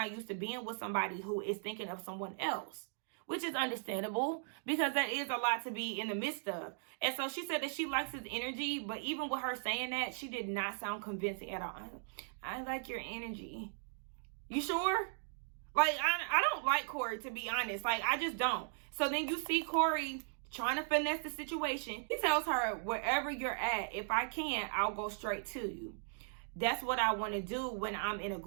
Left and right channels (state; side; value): silent; left; digital silence